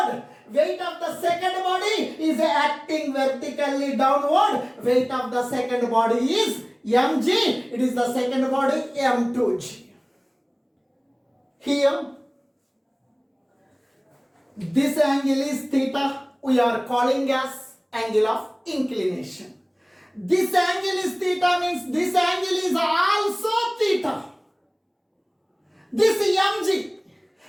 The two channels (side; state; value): both; identical; correlation 1.00